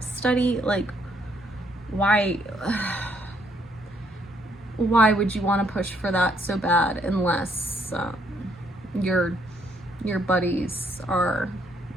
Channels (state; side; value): normal; both; correlation 0.70